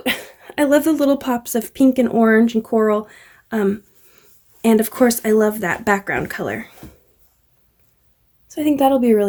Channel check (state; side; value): identical; both; correlation 1.00